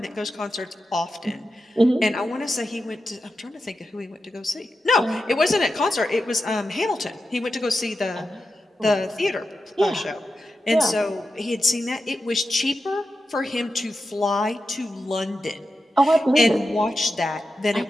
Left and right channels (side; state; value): both; normal; correlation 0.90